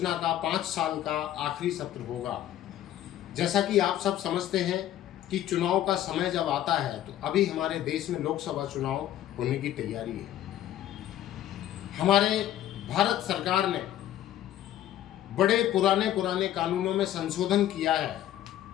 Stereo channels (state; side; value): quieter; right; 12.4 dB